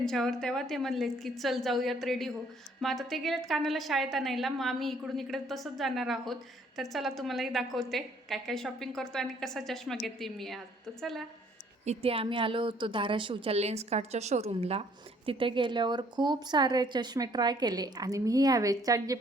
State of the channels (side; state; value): both; normal; correlation 0.62